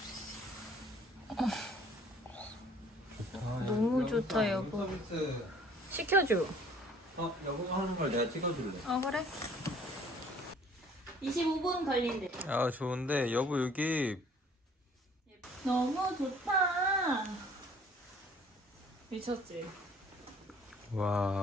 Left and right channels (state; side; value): normal; both; correlation 0.55